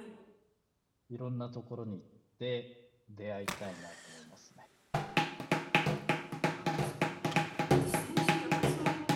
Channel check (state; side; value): identical; both; correlation 1.00